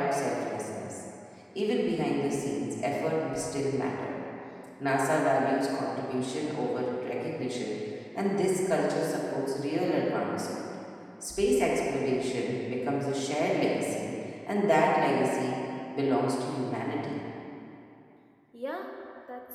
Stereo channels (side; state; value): both; identical; correlation 1.00